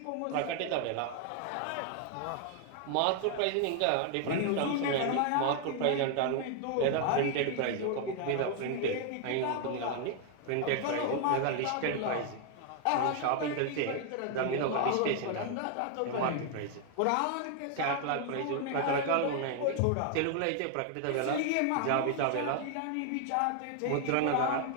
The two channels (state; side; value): different; both; correlation 0.00